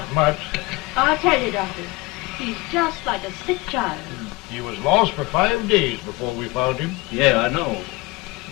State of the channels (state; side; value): quieter; right; 22.5 dB